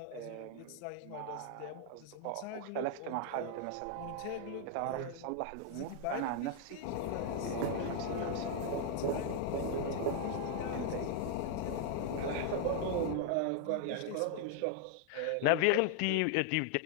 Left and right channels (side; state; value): both; different; correlation 0.00